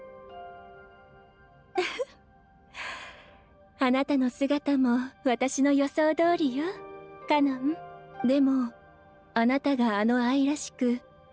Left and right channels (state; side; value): identical; both; correlation 1.00